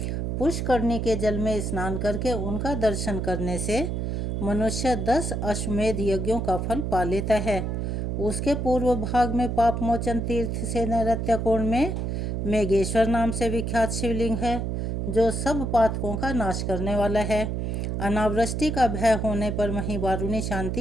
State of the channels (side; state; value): right; noise; hum, 1 dB below the sound